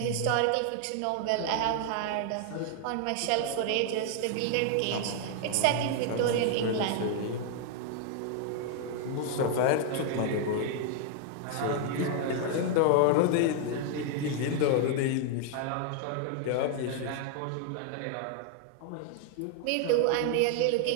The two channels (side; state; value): both; different; correlation 0.00